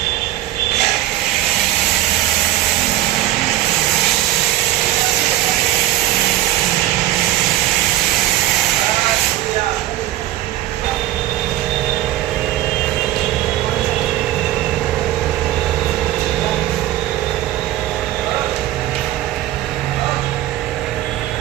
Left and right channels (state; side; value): quieter; left; 14.2 dB